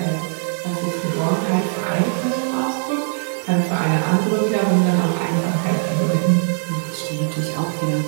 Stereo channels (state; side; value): silent; left; digital silence